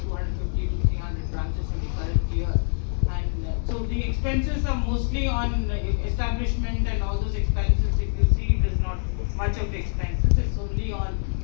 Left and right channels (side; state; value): right; silent; 62 dB below the other